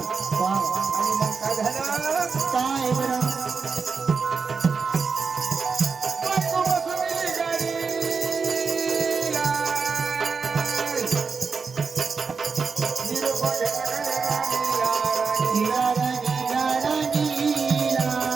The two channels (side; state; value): left; quieter; 5.1 dB